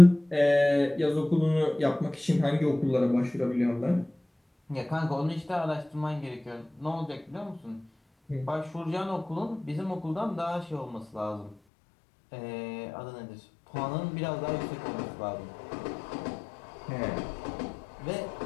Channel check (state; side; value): drops out; right; at 11.6 s